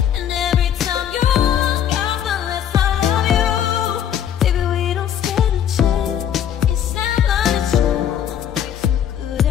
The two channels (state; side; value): quieter; right; 9.7 dB